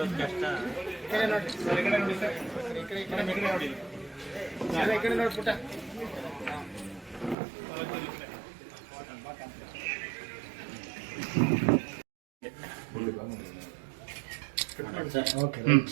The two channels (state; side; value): drops out; left; at 7.4 s